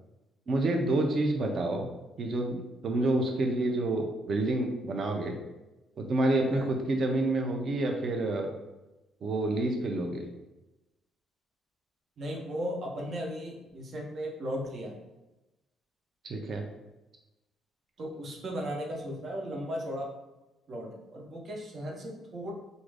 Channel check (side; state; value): both; normal; correlation 0.74